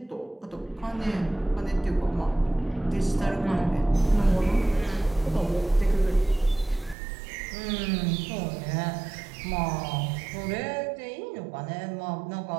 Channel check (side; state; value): left; drops out; at 7.0 s